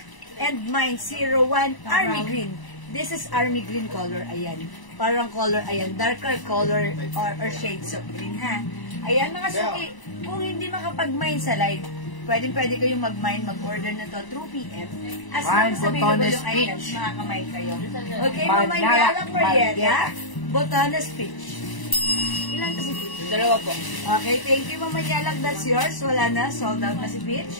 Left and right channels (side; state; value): right; late; 1.0 ms